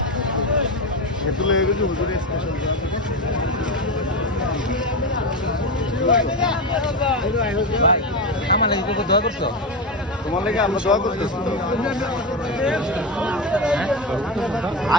এত লয়ে গেছে হুজুরের স্পেশাল আমার লাগি কত দোয়া করছো তোমার লাগি আমরা দোয়া করতেছি তো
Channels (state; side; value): normal; both; correlation 0.16